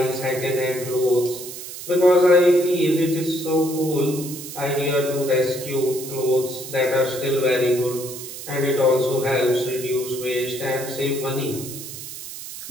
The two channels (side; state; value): right; noise; hiss, 11 dB below the sound